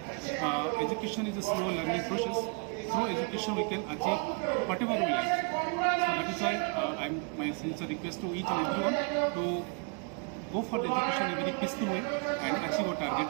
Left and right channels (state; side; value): quieter; left; 35.3 dB